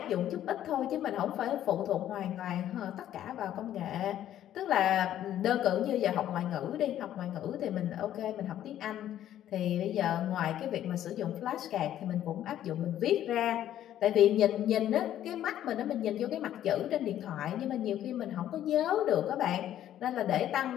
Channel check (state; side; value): quieter; right; 11.7 dB